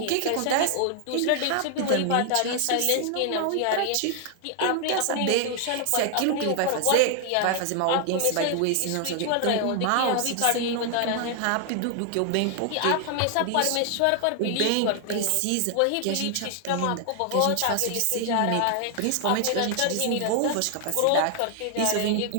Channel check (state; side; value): different; both; correlation 0.00